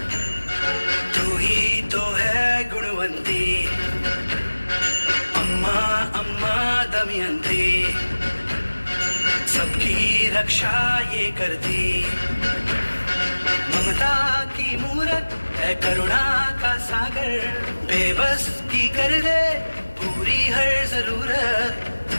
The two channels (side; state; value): both; inverted; correlation -1.00